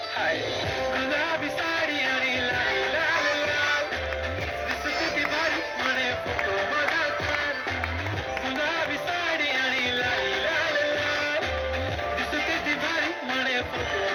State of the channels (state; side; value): identical; both; correlation 1.00